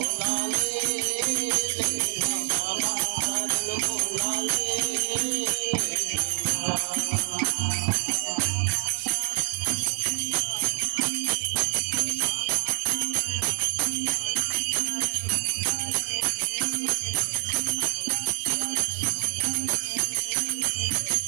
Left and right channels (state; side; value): silent; left; 61 dB below the other